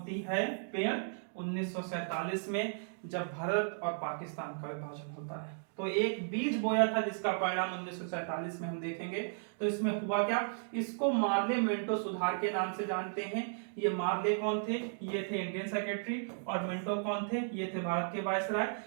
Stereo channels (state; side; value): silent; left; digital silence